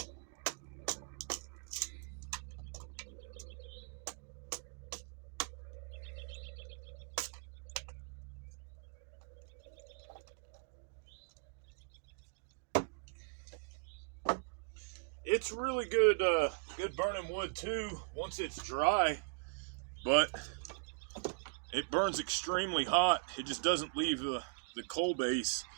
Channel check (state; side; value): quieter; left; 38.9 dB